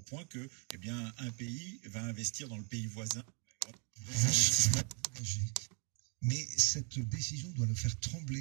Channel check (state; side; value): quieter; left; 39.8 dB